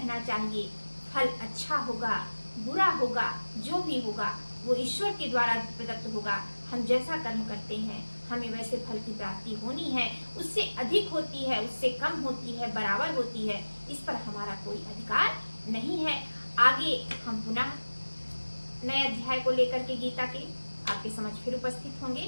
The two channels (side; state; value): both; inverted; correlation -1.00